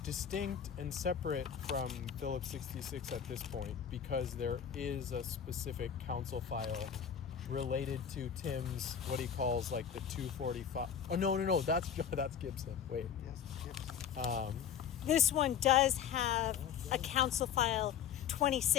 distinct and separate from Phillips 66 at this point because there is a specific council file related to Tim's, what he calls like the 245. Oh, no. That's Gibson. Wait. Yes. This one does have a council file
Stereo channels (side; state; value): right; quieter; 8.2 dB